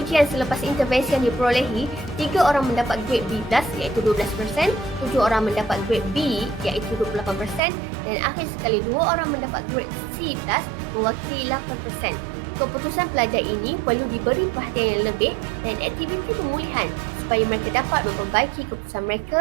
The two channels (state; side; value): drops out; left; at 7.6 s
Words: selepas intervensi yang diperolehi, 3 orang mendapat grade B+, iaitu 12%, 7 orang mendapat grade B, iaitu 28%, dan akhir sekali 2 orang mendapat grade C+, mewakili 8%. Keputusan pelajar ini perlu diberi perhatian yang lebih dan aktiviti pemulihan supaya mereka dapat memperbaiki keputusan